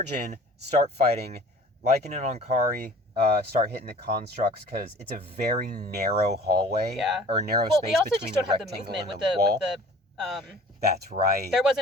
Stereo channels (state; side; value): normal; both; correlation 0.47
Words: in, start fighting. Lycan and Ankari start hitting the constructs because it's a very narrow hallway. Yeah. Or narrow Well, space we also between just don't the have the rectangle movement and with the wall. the That's right. there